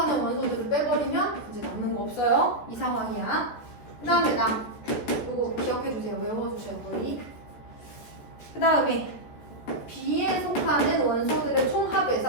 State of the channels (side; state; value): right; late; 14 ms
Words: 원소들을 빼버리면 이제 남는 거 없어요. 이 상황이야. 그 다음에 이거 기억해주세요. 외워주셔야 거의. 그 다음에 B에 속하는 원소들의